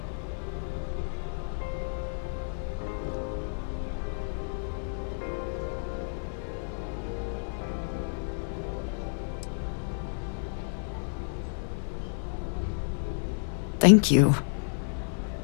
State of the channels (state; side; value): silent; right; digital silence